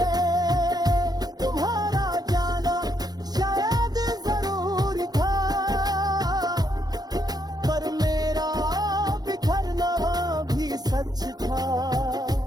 तुम्हारा जाना शायद जरूरी था, पर मेरा बिखरना भी सच था।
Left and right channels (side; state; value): left; late; 0.19 ms